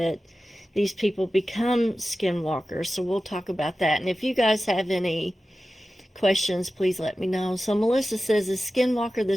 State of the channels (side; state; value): both; normal; correlation 0.94